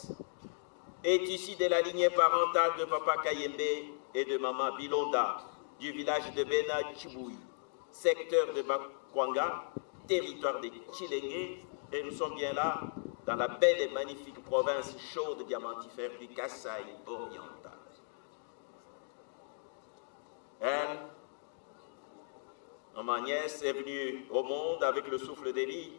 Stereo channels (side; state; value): right; silent; digital silence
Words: est issue de la lignée parentale de papa Kayembe et de maman Bilonda du village de Bena Chiboui, secteur de Bakwanga, territoire de Chilenge, et nous sommes bien là dans la belle et magnifique province chaude diamantifère du Kasaï oriental. Elle, maman Agnès, est venue au monde avec le souffle de vie